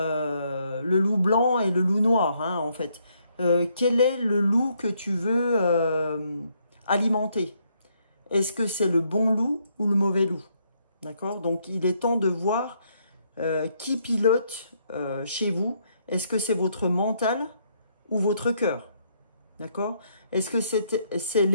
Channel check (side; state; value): both; inverted; correlation -0.72